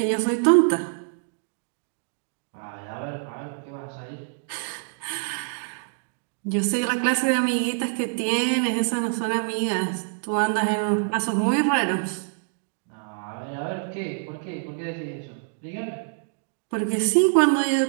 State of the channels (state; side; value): silent; left; digital silence